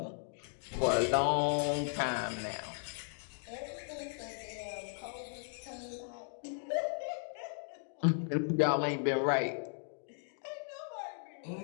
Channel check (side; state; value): right; silent; 53 dB below the other